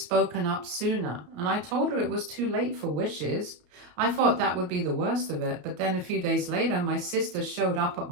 up sooner, and I told her it was too late for wishes. I thought that would be the worst of it, but then a few days later, my sister showed up at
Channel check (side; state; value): left; late; 33 ms